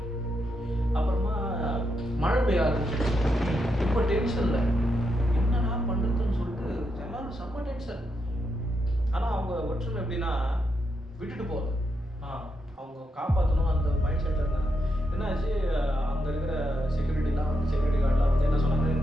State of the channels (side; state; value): both; normal; correlation 0.82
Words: அப்புறமா மழை பெய்ய ஆரம்பிச்சு. ரொம்ப டென்ஷன்ல என்னடா பண்றதுன்னு சொல்லிட்டு எல்லாரும் செம்ம டென்ஷன். ஆனா அவங்க ஒற்றுமை எப்படின்னா விட்டுட்டு போகுது, அவங்க காப்பாற்றணும் அந்த மைண்ட் செட்ல இருந்தாங்க. என்னாச்சு, அங்க இருக்கிற செக்யூரிட்டிலாம் வந்து செக்யூரிட்டி கார்டெலாம் வந்து என்ன சொன்னாங்க,